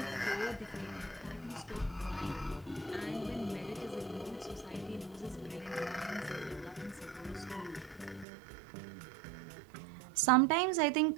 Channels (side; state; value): left; drops out; at 8.2 s